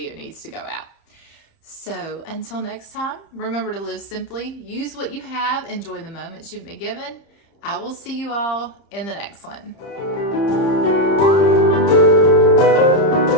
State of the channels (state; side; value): late; right; 30 ms